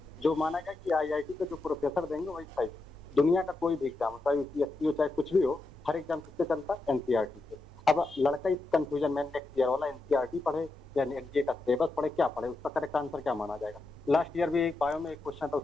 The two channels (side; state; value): right; quieter; 3.2 dB